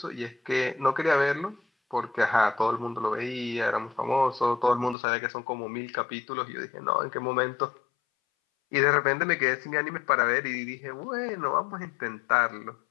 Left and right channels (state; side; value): drops out; right; at 5.0 s